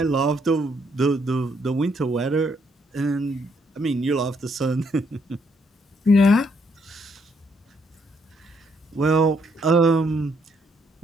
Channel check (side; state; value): both; normal; correlation 0.72